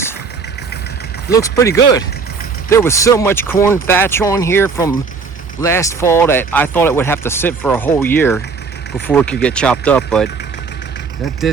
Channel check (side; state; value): left; quieter; 5.0 dB